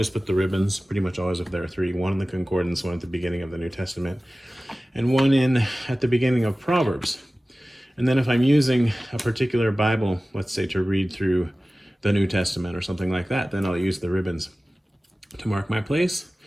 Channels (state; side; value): normal; both; correlation 0.97